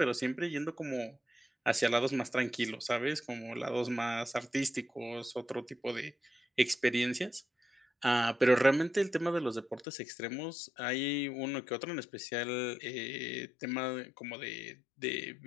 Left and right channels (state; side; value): drops out; right; at 9.9 s